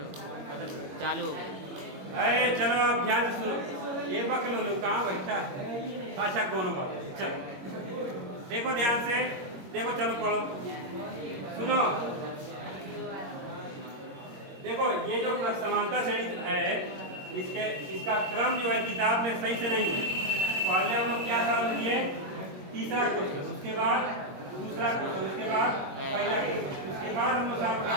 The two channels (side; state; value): left; late; 22 ms